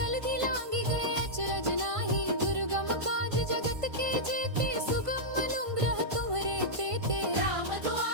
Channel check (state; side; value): late; left; 1.5 ms